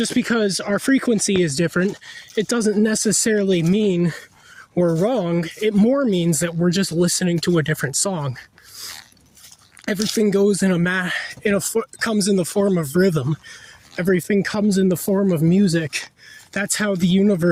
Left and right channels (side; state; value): both; identical; correlation 1.00